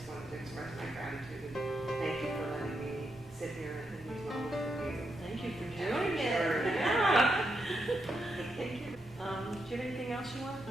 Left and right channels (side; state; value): both; normal; correlation 0.82